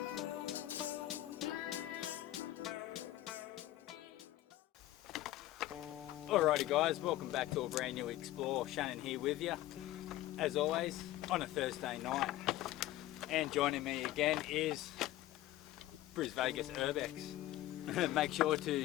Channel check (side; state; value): right; quieter; 15.2 dB